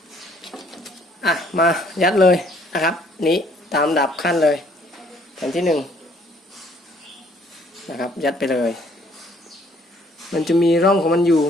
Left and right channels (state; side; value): normal; both; correlation 0.62